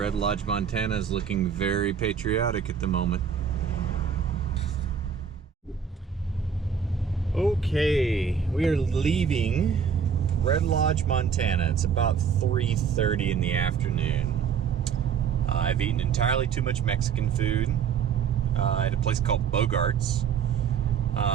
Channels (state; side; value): quieter; left; 7.0 dB